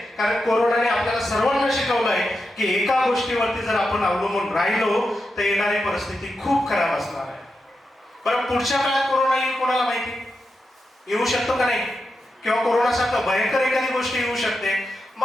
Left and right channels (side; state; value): both; normal; correlation 0.88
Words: कारण कोरोनाने आपल्याला सर्वांना शिकवलंय की एका गोष्टीवरती जर आपण अवलंबून राहिलो तर येणारी परिस्थिती खूप खराब असणार आहे. बरं, पुढच्या काळात कोरोना येईल कोणाला माहिती? येऊ शकतो का नाही? किंवा कोरोनासारखं भयंकर एखादी गोष्ट येऊ शकते,